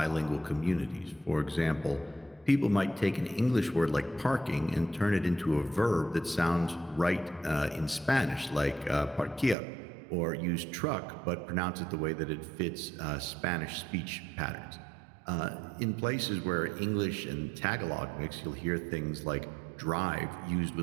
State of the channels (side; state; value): left; drops out; at 9.6 s